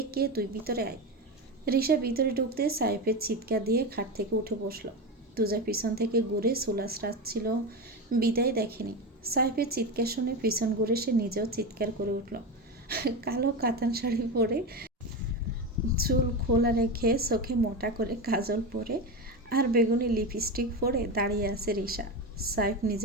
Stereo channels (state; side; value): normal; both; correlation 0.18